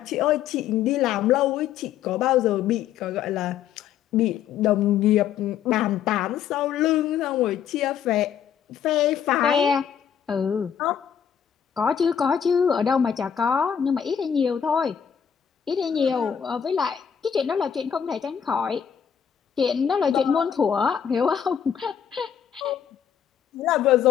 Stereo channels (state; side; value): quieter; right; 8.4 dB